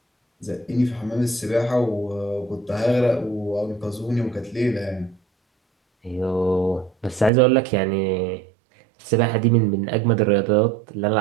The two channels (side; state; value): left; drops out; at 7.3 s